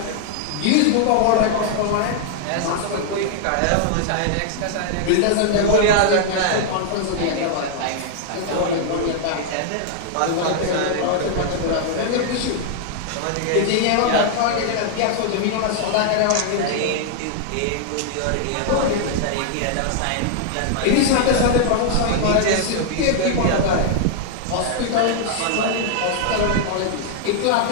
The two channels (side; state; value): both; different; correlation -0.01